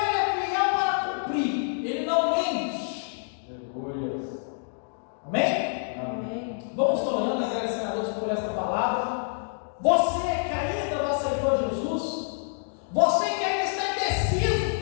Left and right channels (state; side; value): silent; right; digital silence